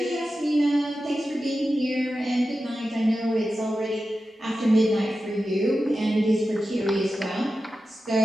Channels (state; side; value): normal; both; correlation 0.92